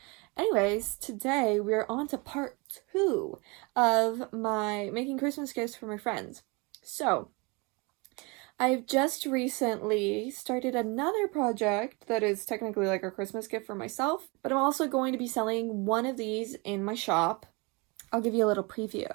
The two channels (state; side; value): quieter; left; 28.5 dB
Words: Anyways, today we're on to part 2 of my making Christmas gifts for my friends. So, I've just recently started another project that is technically like a Christmas gift for myself, but I'm also going to be selling one of these in my shop. I'll give you a little